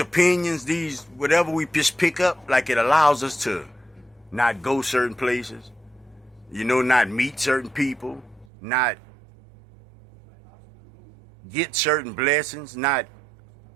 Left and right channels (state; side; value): drops out; left; at 8.5 s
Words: these whatever we just pick up, like it allows us to not go certain places, you know, not meet certain people, not get certain blessings, not